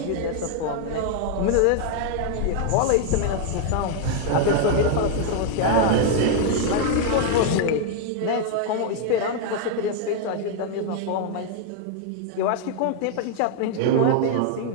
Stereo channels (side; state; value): both; different; correlation 0.00